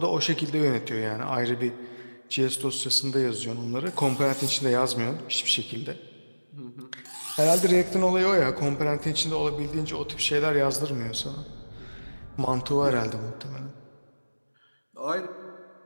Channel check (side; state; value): both; inverted; correlation -1.00